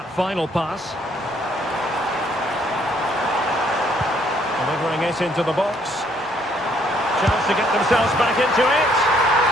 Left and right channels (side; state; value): both; normal; correlation 0.66